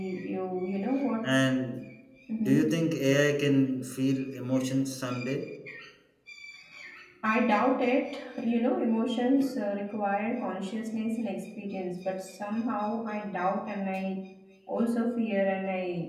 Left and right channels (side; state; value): both; identical; correlation 1.00